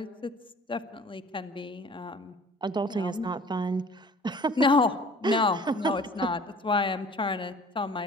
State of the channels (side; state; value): both; normal; correlation 0.49